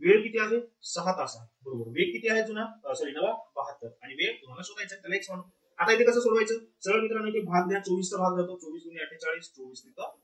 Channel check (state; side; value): identical; both; correlation 1.00